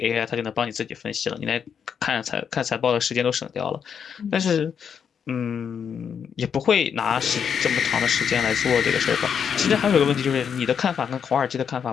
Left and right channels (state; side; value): quieter; right; 7.4 dB